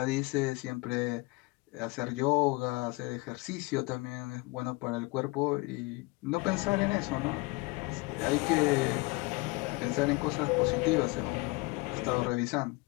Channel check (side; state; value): right; quieter; 24.9 dB